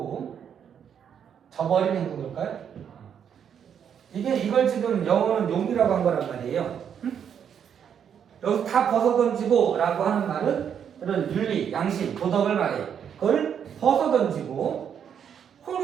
저버린 행동일까요? 이걸 지금 영어는 용기라고 한 거란 말이에요. 여기서 다 벗어던지고 라고 하는 말은 그런 윤리, 양심, 도덕을 말해요. 그걸 벗어던지고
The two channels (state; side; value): quieter; left; 8.2 dB